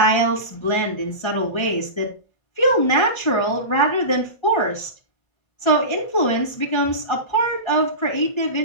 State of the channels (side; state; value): right; late; 1.3 ms